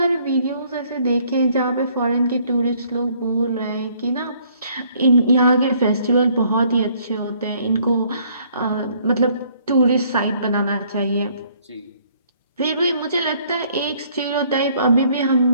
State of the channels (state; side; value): inverted; both; correlation -0.63